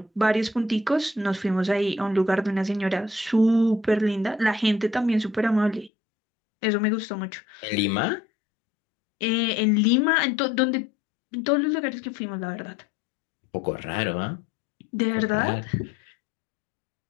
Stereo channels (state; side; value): drops out; right; at 5.9 s